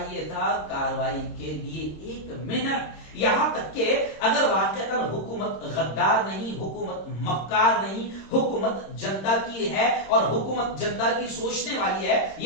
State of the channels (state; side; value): late; right; 26 ms